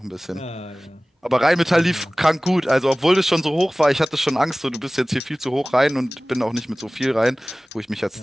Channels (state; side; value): normal; both; correlation 0.98